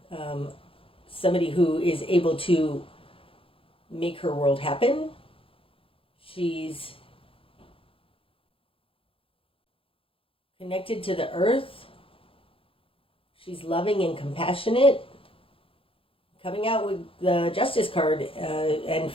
somebody who is able to make her world happen. She's connected to the earth. She's loving and compassionate. Coming out with the Justice card and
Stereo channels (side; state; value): right; late; 0.27 ms